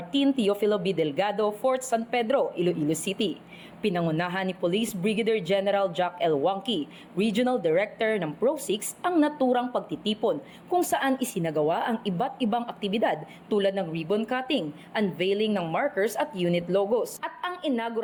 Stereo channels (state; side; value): identical; both; correlation 1.00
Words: Teofilo B. Delgado, Fort San Pedro, Iloilo City. Pinangunahan ni Police Brigadier General Jack L. Wangki, Regional Director ng Pro-6, ang naturang pagtitipon kung saan isinagawa ang iba't ibang aktibidad tulad ng ribbon cutting, unveiling ng markers at unit logos, at ang